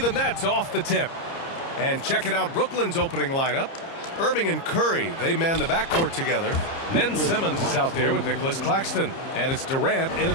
Nets off the tip. And checking out Brooklyn's opening lineup. Irving and Curry, they man the backcourt together. Ben Simmons is out there with Nicholas Claxton. And it's Durant in at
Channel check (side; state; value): right; late; 30 ms